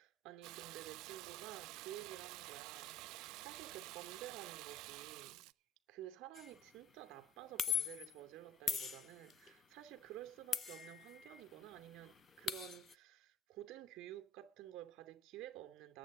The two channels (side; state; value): both; normal; correlation 0.43